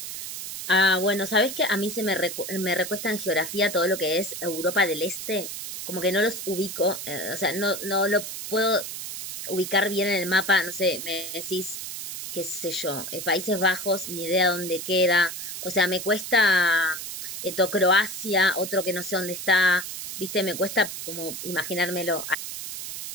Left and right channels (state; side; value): noise; right; hiss, 7 dB below the sound